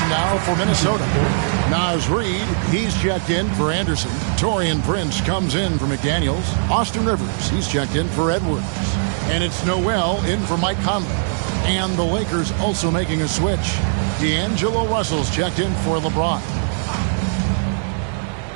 now for Minnesota. Naz Reid, he's checked in for Anderson. Taurean Prince comes in for McDaniels. Austin Rivers, he's checked in for Edwards. And it's Noel in for Mike Conley. And the Lakers also making a switch. D'Angelo Russell's checked in for LeBron.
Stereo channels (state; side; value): silent; left; digital silence